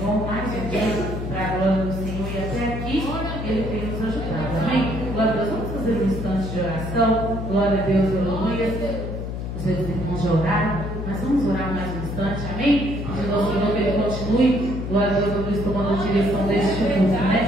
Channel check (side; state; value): left; noise; hum, 5 dB below the sound